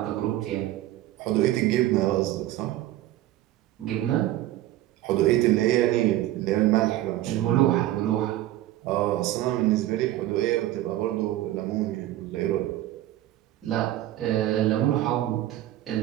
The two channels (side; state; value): left; quieter; 14.6 dB